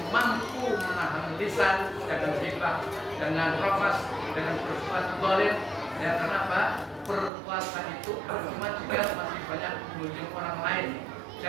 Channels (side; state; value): left; drops out; at 7.3 s